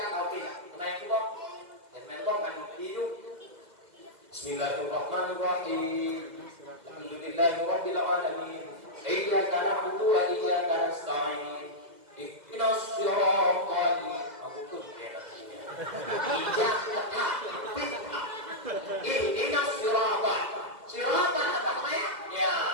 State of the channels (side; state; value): left; late; 2.0 ms